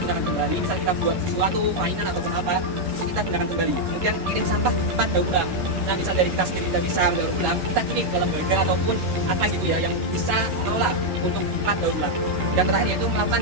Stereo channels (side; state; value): left; late; 11 ms